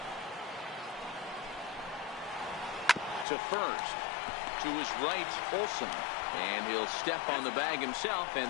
To first. To his right, Olsen. And he'll step on the bag himself,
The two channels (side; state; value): right; drops out; at 3.2 s